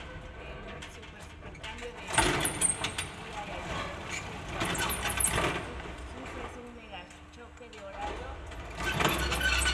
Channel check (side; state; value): both; identical; correlation 1.00